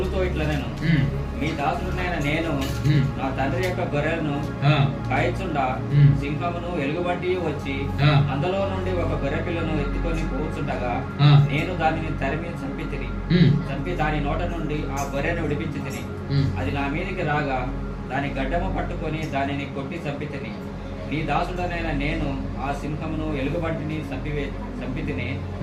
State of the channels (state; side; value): identical; both; correlation 1.00